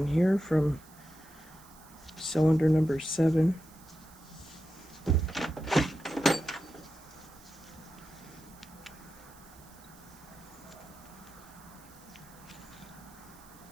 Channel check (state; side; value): noise; right; hiss, 23 dB below the sound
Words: here from cylinder number 7.